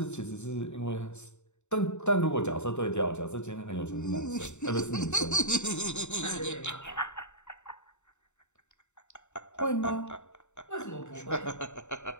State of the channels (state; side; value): late; right; 0.83 ms